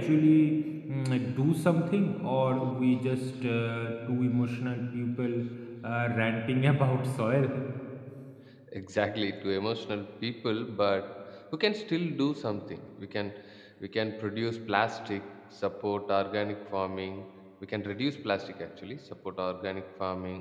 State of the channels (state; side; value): identical; both; correlation 1.00